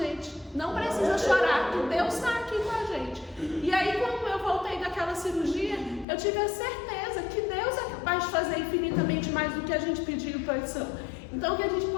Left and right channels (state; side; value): drops out; right; at 6.1 s